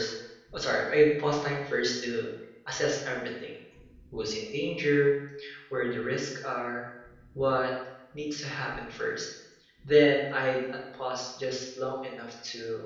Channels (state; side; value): identical; both; correlation 1.00